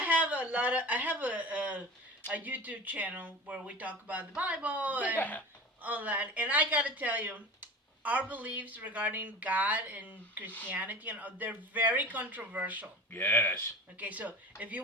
have a YouTube channel where we talk about the Bible and all that. And I got to tell you, our beliefs regarding God and Christianity, they're very controversial. Yes. Okay, so if you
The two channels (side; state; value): both; normal; correlation 0.34